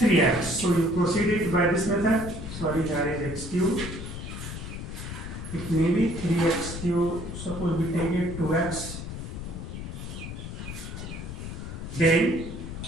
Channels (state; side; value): noise; left; rumble, 8 dB below the sound